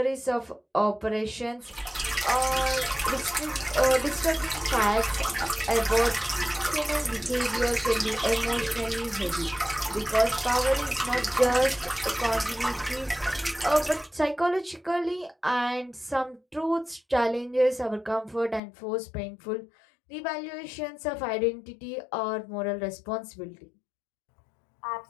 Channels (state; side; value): drops out; right; at 18.6 s